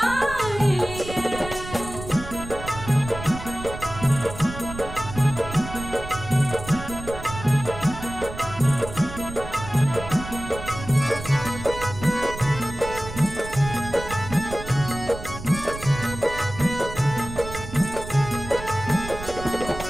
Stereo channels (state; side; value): noise; right; rumble, 11 dB below the sound